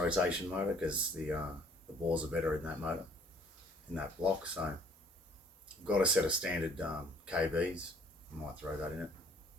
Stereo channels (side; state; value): both; normal; correlation 0.58